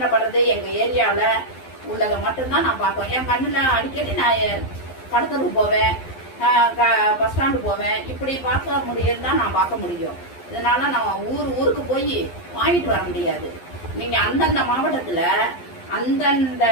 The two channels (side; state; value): right; late; 11 ms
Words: படுறது எங்க ஏரியாவில உள்ளதை மட்டும்தான் நான் பார்ப்பேன். என் கண்ணுல அடிக்கடி நான் கடத்தலுக்கு போவேன், பஸ் ஸ்டாண்டு போவேன். இப்படி பார்க்க முடியுதுதான் நான் பார்க்க முடியும். இதனால நான் ஊருக்கு போய் வாங்கிட்டு வர முடியாது. நீங்க அந்தந்த மாவட்டத்துல அந்தந்த